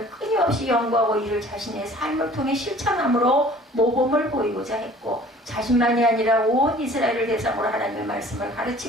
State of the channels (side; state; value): both; normal; correlation 0.50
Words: 끊임없이 연구하고 이를 자신의 삶을 통해 실천함으로 모범을 보이고자 했고, 자신만이 아니라 온 이스라엘을 대상으로 하나님의 말씀을